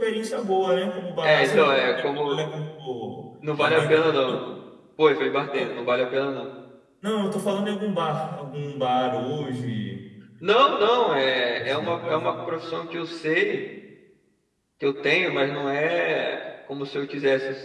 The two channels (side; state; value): both; identical; correlation 1.00